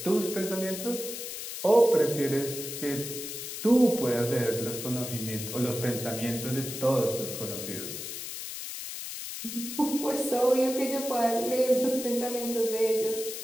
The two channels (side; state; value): left; noise; hiss, 7 dB below the sound